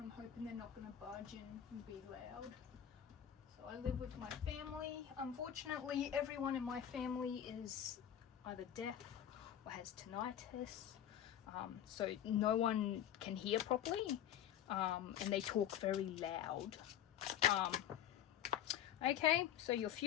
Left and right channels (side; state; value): right; quieter; 10.4 dB